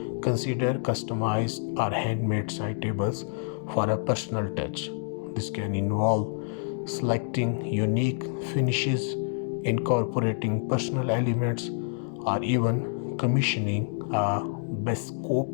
Consider customized or handmade side tables for a personal touch. This can involve selecting unique finishes, incorporating personal elements, or even commissioning a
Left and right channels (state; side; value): silent; right; digital silence